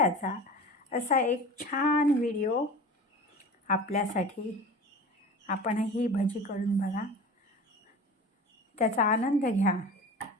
असा एक छान व्हिडिओ आपल्यासाठी. आपणही भजी करून बघा, त्याचा आनंद घ्या.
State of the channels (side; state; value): both; normal; correlation 0.36